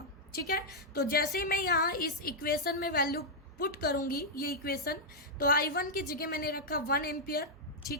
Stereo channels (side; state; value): both; normal; correlation -0.05